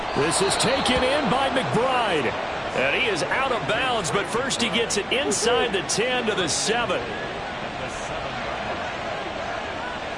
This is taken in by McBride. And he is out of bounds, but first he gets it inside the 10 to the 7.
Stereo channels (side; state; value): both; identical; correlation 1.00